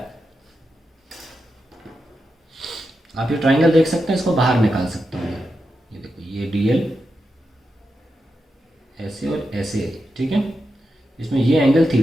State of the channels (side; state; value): both; normal; correlation 0.88